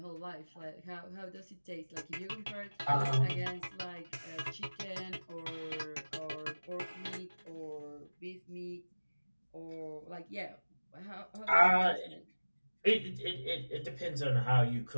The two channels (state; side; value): inverted; both; correlation -1.00